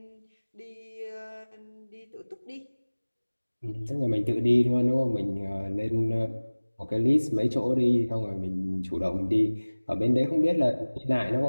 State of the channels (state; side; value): inverted; both; correlation -1.00